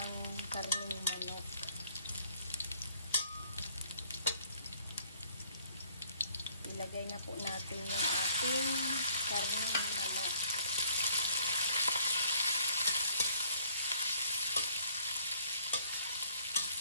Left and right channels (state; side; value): inverted; both; correlation -0.61